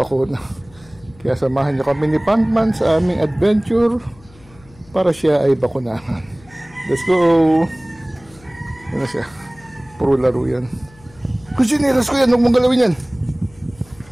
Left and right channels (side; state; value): left; noise; hum, 25 dB below the sound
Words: Kaya samahan niyo kami ni Panpan sa aming adventure para siya ay bakunahan. Let's go! Ano siya? Puro laro yan. Kusiniras ko yan, huwag mong galawin yan.